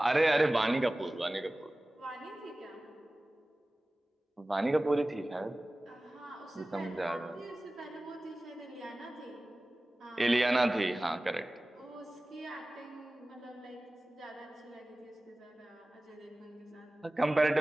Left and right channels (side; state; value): both; normal; correlation 0.97